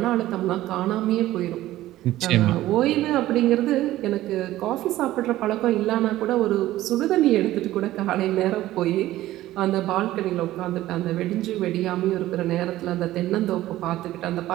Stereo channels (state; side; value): quieter; left; 15.2 dB